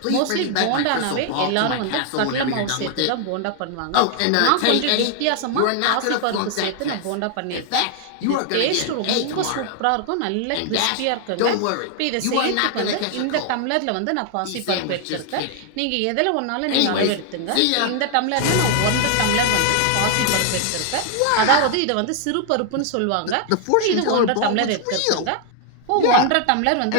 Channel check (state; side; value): different; both; correlation 0.00